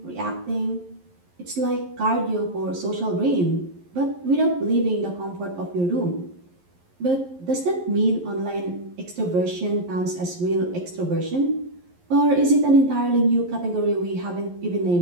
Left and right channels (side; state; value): left; late; 11 ms